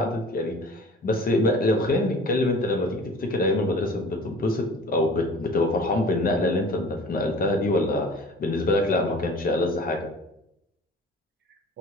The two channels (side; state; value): both; normal; correlation 0.44